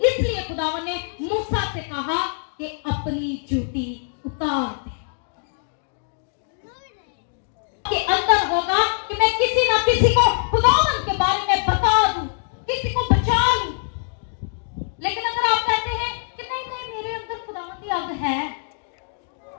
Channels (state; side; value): silent; right; digital silence